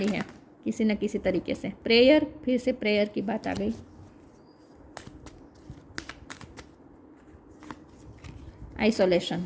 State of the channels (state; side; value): identical; both; correlation 1.00